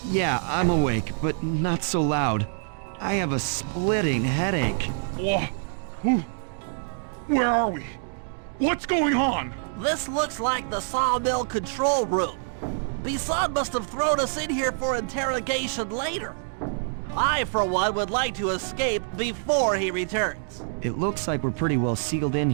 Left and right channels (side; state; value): left; silent; digital silence